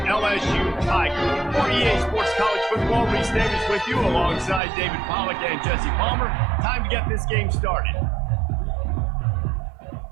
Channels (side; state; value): left; drops out; at 4.6 s